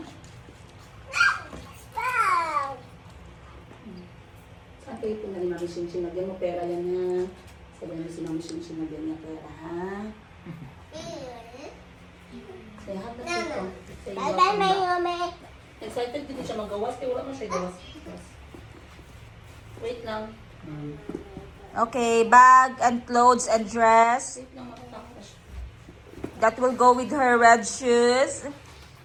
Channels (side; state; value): both; identical; correlation 1.00